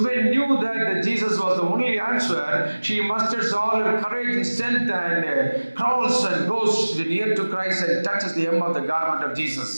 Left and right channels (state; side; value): inverted; both; correlation -1.00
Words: knew that Jesus was the only answer, she musters all her courage and strength and crawls and goes near to Christ and touches the hem of the garment of Jesus.